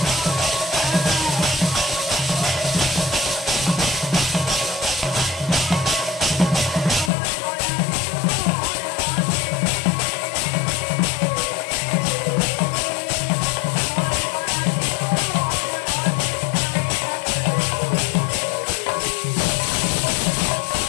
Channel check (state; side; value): drops out; right; at 7.1 s